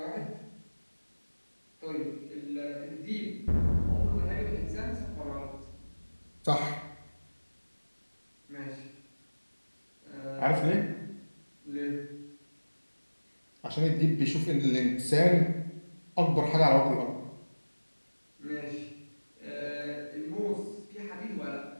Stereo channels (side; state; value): both; inverted; correlation -1.00